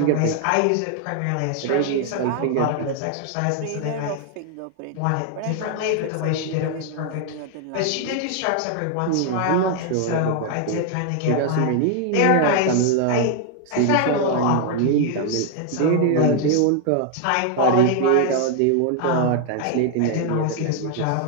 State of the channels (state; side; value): different; both; correlation 0.00